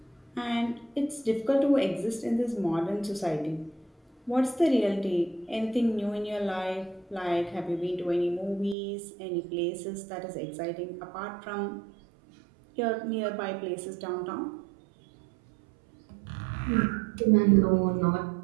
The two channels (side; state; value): left; drops out; at 8.8 s